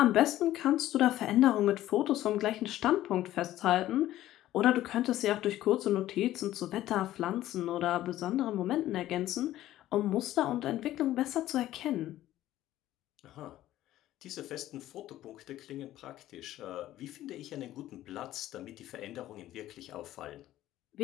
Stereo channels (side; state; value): right; quieter; 14.1 dB